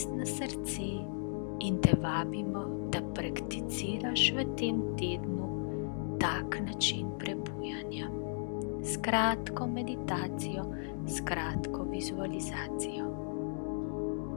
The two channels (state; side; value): silent; right; digital silence